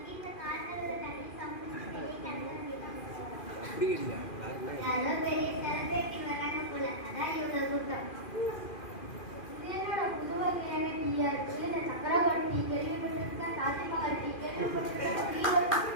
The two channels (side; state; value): right; late; 2.4 ms